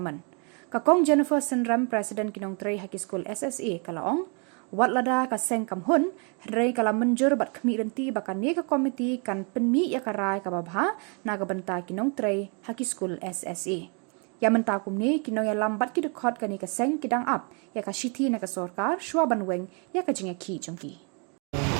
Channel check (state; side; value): quieter; left; 35.9 dB